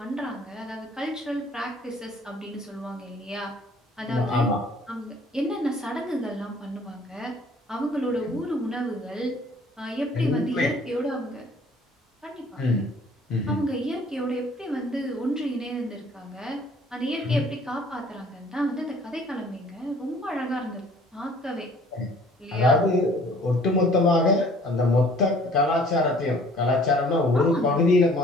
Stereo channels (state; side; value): normal; both; correlation 0.55